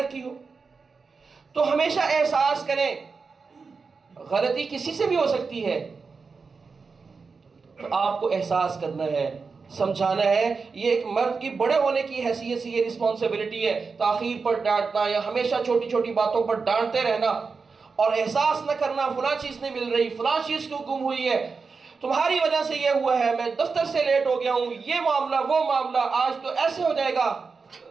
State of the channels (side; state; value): left; quieter; 4.8 dB